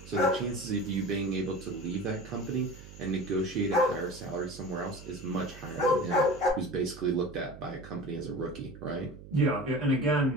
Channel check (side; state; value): right; noise; hum, 16 dB below the sound